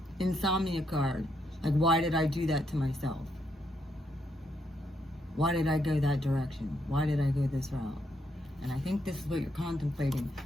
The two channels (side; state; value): both; normal; correlation 0.77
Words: Insomnia card. Like, why did I do that to myself? Why did I go that direction? Why did I go this route? And I think this is what you're contemplating.